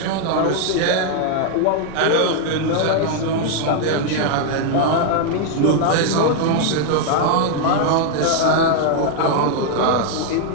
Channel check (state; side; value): different; both; correlation 0.00